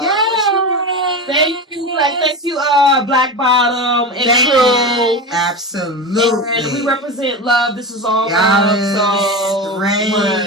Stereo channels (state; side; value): normal; both; correlation 0.23